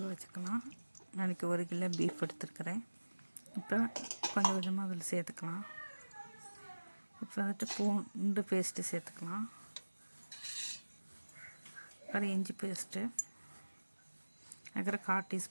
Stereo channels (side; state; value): both; inverted; correlation -1.00